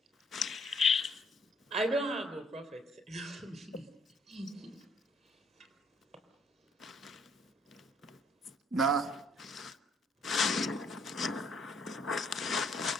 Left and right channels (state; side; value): normal; both; correlation 0.66